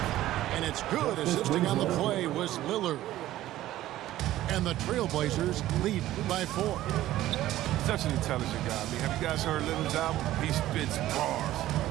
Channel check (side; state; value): left; quieter; 14.5 dB